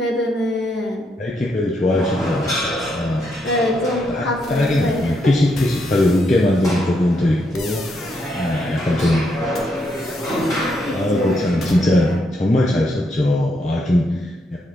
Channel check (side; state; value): both; normal; correlation 0.78